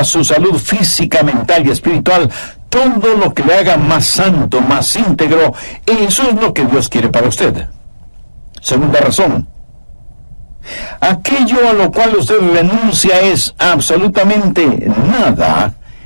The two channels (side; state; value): both; inverted; correlation -1.00